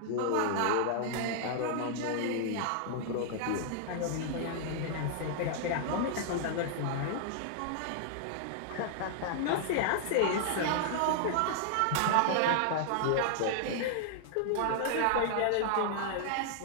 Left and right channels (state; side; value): different; both; correlation -0.01